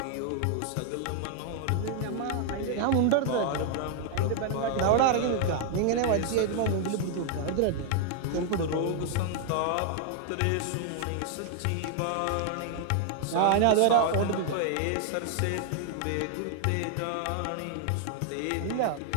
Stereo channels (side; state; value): both; different; correlation 0.00